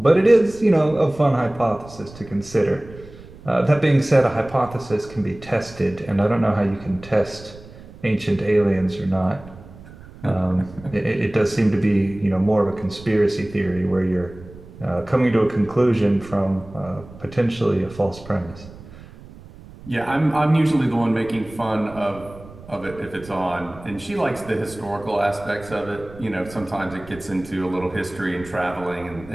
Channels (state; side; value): noise; right; rumble, 19 dB below the sound